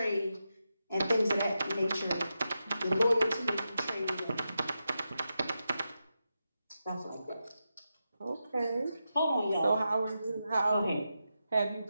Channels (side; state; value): both; inverted; correlation -0.88